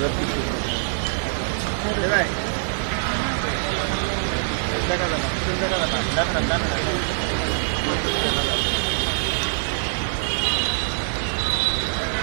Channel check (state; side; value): silent; left; digital silence